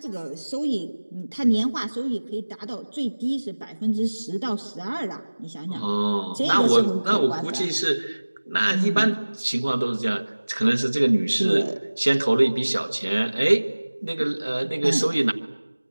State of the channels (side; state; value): both; inverted; correlation -1.00